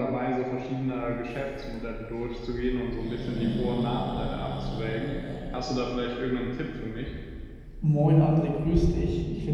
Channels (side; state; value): both; identical; correlation 1.00